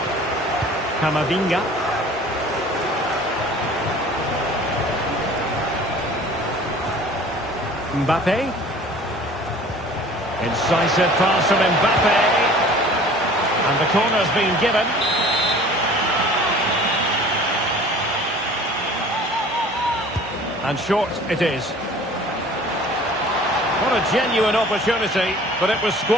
Camavinga. Mbappe. Incisive pass from Mbappe. And the corner's been given. And short it is. What a genuine opportunity, but it was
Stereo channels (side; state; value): both; normal; correlation 0.47